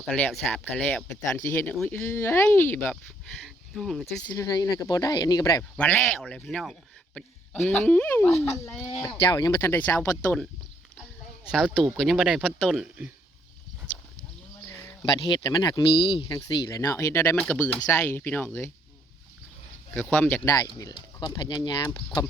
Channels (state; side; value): normal; both; correlation 0.69